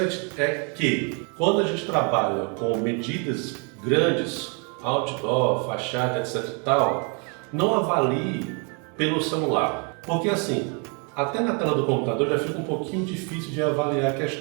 é que quando a gente trabalha com medidas grandes, outdoor, fachada, etc e tal, não avalie pelo celular, porque assim, até na tela do computador já fica um pouquinho difícil de avaliar a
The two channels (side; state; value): left; quieter; 36.1 dB